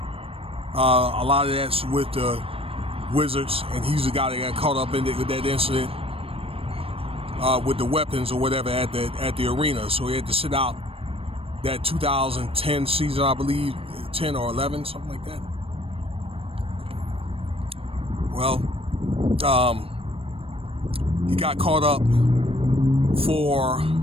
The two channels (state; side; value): late; left; 0.28 ms